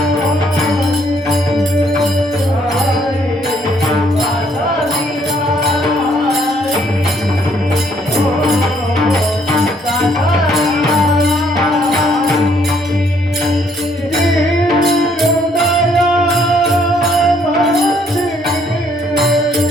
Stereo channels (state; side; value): normal; both; correlation 0.67